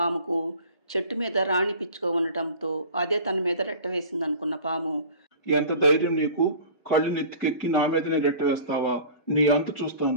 చెట్టు మీద రాణి పిచ్చుక ఉండటంతో అదే తన మీద రెట్ట వేసింది అనుకున్న పాము, ఎంత ధైర్యం నీకు? కళ్ళు నెత్తికెక్కి నా మీదనే రెట్ట వేస్తావా? నీ అంతు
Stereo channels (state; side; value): inverted; both; correlation -0.41